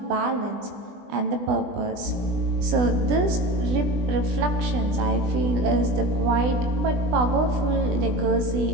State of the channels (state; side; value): late; left; 20 ms